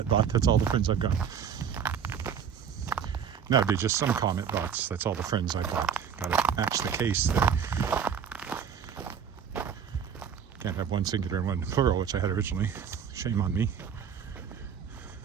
bot, that's all the friends I've got. That'd be just some comment bots, that's all the friends I've got. Gotta match the case there. Can't have one singular and one plural, which I had originally. Shame on me.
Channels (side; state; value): left; quieter; 7.6 dB